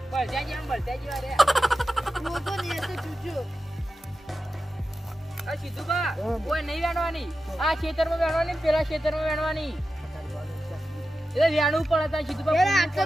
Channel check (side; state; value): both; normal; correlation 0.92